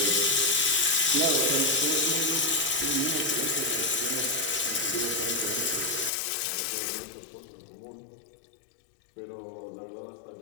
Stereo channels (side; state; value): right; drops out; at 6.1 s